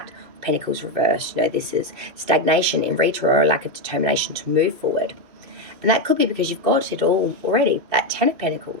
of Pentacles reversed. You know, this is stagnation in retro or a lack of determination to move forward. And that could be because you've got it all already, that 10 of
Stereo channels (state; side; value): late; left; 2.6 ms